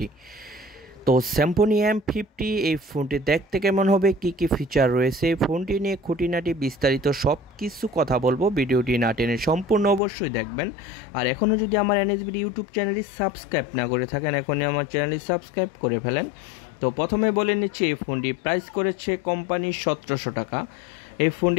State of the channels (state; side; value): drops out; right; at 10.0 s